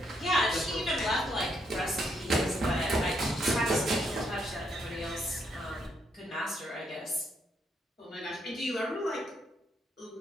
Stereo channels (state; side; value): normal; both; correlation 0.75